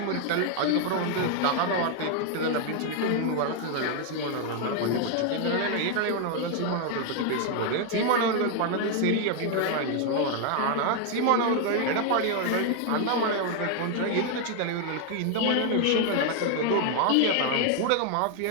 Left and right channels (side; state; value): both; different; correlation 0.00